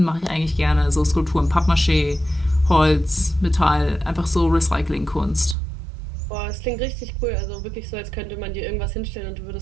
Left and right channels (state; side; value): drops out; left; at 5.6 s